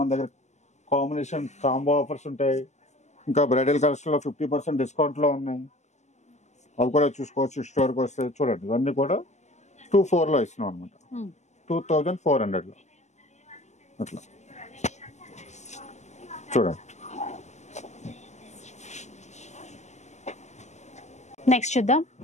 దగ్గర కాంబినేషన్ కాంబో ఆఫర్స్ ఉంటాయి. ఇంకా బ్రైడల్ కలర్స్ లో 50% డిస్కౌంట్ లో ఉన్నాయి, అవి కూడా చూసుకోవచ్చు. స్టోర్కి వస్తే చూడండి, ఇవన్నీ కూడా 24 లో ఇస్తున్నాం అనమాట. 2400 లో అట్లా చూడండి. నెక్స్ట్ చూద్దాం.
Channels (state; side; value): late; right; 0.33 ms